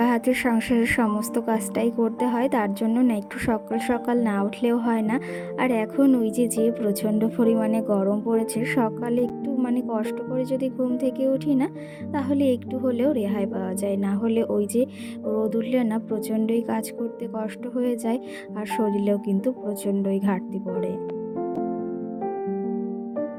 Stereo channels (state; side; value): identical; both; correlation 1.00